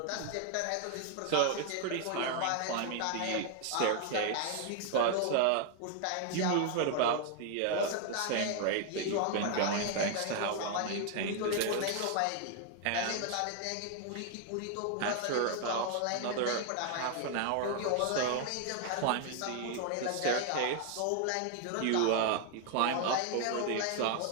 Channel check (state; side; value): different; both; correlation 0.00